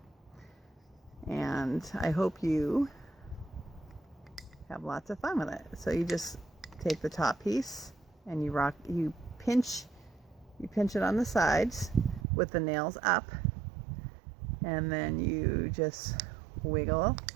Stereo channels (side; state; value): left; drops out; at 12.2 s